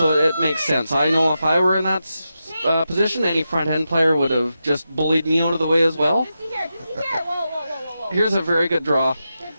it makes sense. I know if I were in that position, any front end player would have just bullied me out of the way as well. Whoa. Here's a very good draw.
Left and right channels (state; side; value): inverted; both; correlation -0.89